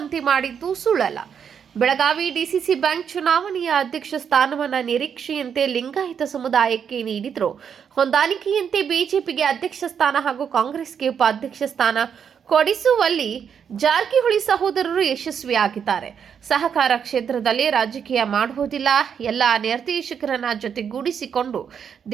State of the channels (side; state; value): left; quieter; 7.5 dB